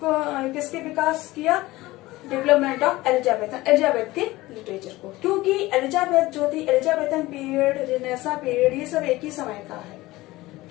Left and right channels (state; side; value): quieter; right; 18.9 dB